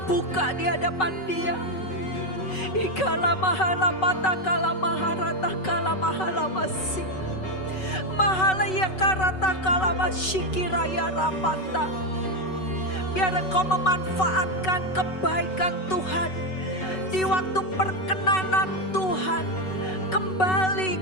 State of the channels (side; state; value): right; late; 5.3 ms